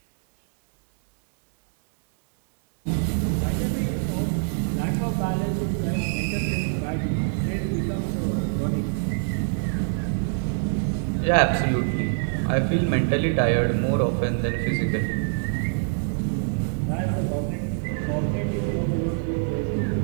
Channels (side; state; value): left; silent; 62 dB below the other